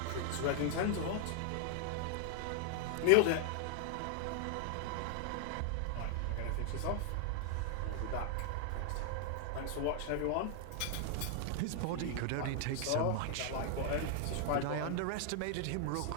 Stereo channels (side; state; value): both; different; correlation 0.00